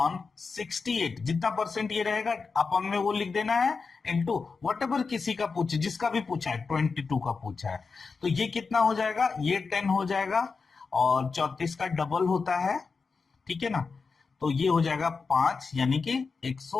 68, जितना परसेंट ये रहेगा अपन में वो लिख देना है इनटू वट एवर किसी का पूछे, जिसका भी पूछा है 22 का पूछा है, तो ये कितना हो जाएगा, ये 10 हो जाएगा और 34 का डबल होता है, ठीक है ना, तो ये हो जाएगा 5 यानी कि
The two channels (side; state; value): right; quieter; 4.7 dB